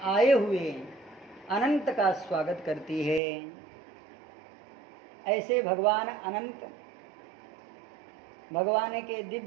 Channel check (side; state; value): left; drops out; at 3.2 s